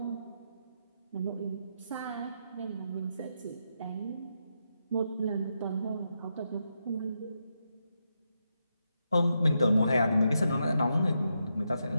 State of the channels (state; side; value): inverted; both; correlation -0.83